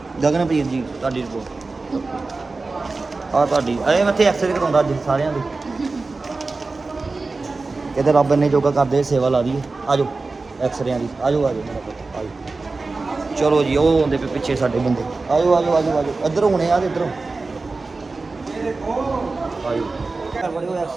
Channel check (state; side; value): quieter; left; 3.7 dB